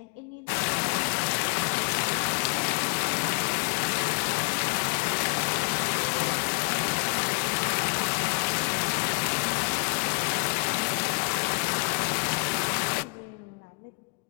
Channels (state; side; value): quieter; right; 35.5 dB